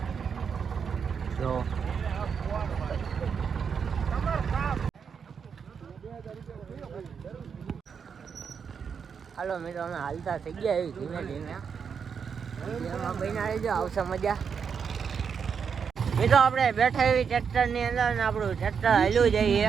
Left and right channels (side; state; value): left; quieter; 6.6 dB